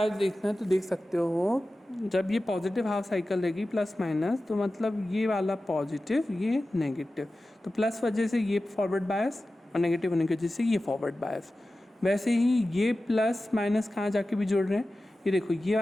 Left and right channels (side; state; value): both; normal; correlation 0.95